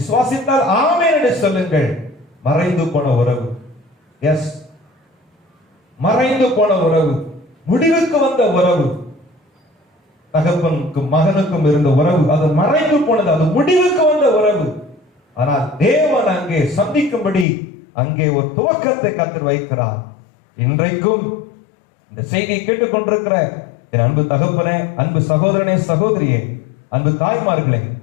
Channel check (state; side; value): drops out; right; at 17.4 s